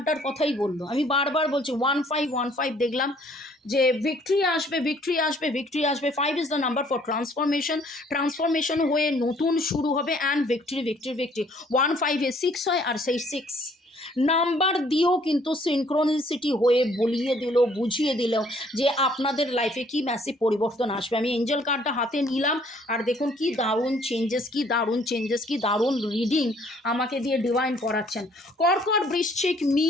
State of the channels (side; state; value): both; normal; correlation 0.61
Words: কথাই বললো। আমি বারবার বলছি 1515 দেখলাম যে ভিক্টরি আসবে, ভিক্টরি আসবে, ভিক্টরি আসবে। 5 is the number for transformation, transformation হয়ে নতুন শুরু হবে, অ্যান্ড ভিক্টরি ভিক্টরি ভিক্টরি। 1 5 6 হয়, আর সেই 6 নাম্বার দিয়েও কিন্তু সিনক্রোনিসিটি হয়ে বলিয়ে দিল, বুঝিয়ে দিল যে আপনাদের লাইফে কি ম্যাসিভ পরিবর্তন আসবে। আমি এঞ্জেল কার্ডটা হাতে নিলাম, আর দেখুন কি দারুণ চেঞ্জেস, কি দারুণ চেঞ্জেস, কি দারুণ রিডিং আমাকে দিয়ে ডিভাইন করাচ্ছেন। কর্কট, বৃশ্চিক,